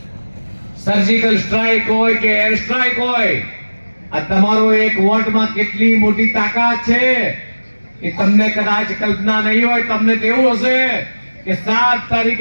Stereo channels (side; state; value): both; inverted; correlation -1.00